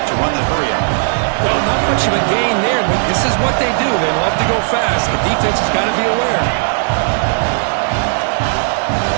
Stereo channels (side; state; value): left; silent; digital silence